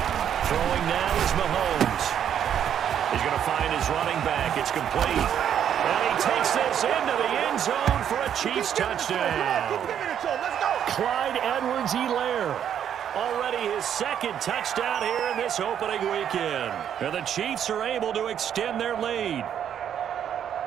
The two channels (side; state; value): left; quieter; 9.3 dB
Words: Throwing now is Mahomes. He's going to find his running back. It's complete. And he takes this into the end zone for a Chiefs touchdown. Clyde Edwards-Helaire. Already his second touchdown here in this opening weekend. And the Chiefs are able to extend their lead.